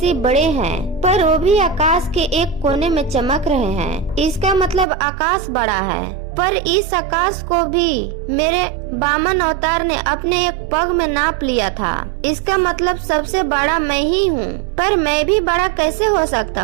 बड़े हैं, पर वो भी आकाश के एक कोने में चमक रहे हैं। इसका मतलब आकाश बड़ा है, पर इस आकाश को भी मेरे वामन अवतार ने अपने एक पग में नाप लिया था। इसका मतलब सबसे बड़ा मैं ही हूँ, पर मैं भी बड़ा कैसे हो सकता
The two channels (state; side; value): drops out; left; at 4.9 s